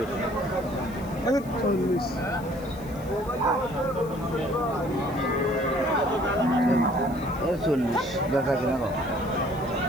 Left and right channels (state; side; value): noise; left; hiss, 23 dB below the sound